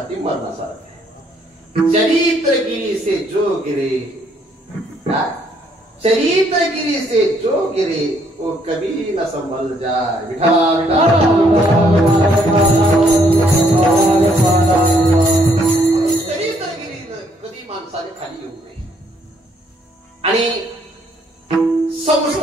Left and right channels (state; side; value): normal; both; correlation 0.68